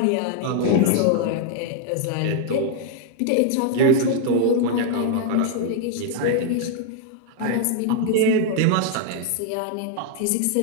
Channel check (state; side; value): different; both; correlation 0.00